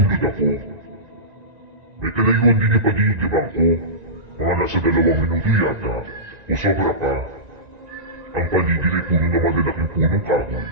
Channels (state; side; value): late; left; 1.9 ms